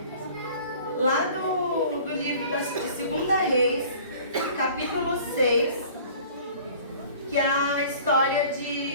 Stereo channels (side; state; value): both; inverted; correlation -0.48